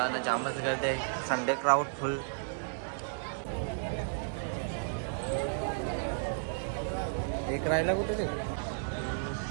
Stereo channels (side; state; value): left; silent; digital silence